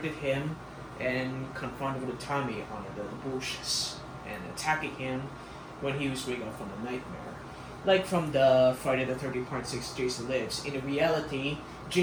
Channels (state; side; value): identical; both; correlation 1.00